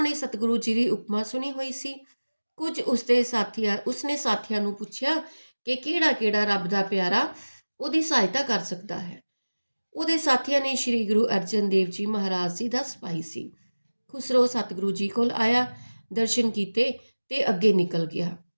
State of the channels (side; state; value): both; inverted; correlation -1.00